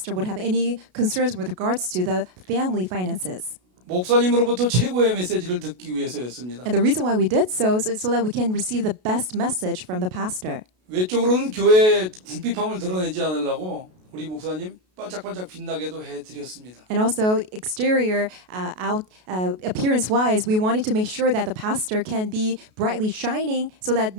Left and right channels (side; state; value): left; late; 33 ms